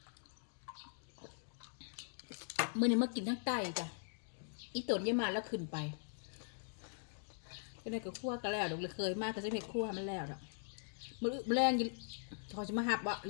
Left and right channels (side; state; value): right; silent; digital silence